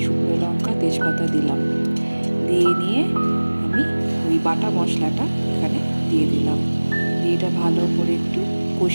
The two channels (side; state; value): both; inverted; correlation -1.00